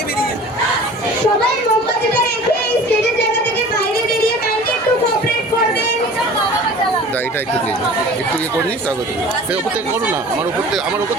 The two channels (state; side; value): normal; both; correlation 0.43